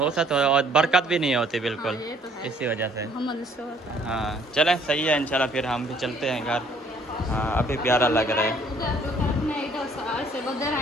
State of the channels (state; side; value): normal; both; correlation 0.60